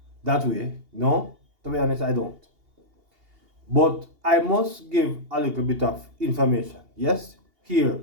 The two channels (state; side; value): late; left; 2.8 ms